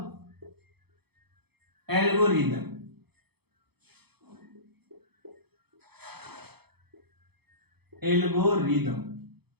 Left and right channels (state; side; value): late; left; 0.97 ms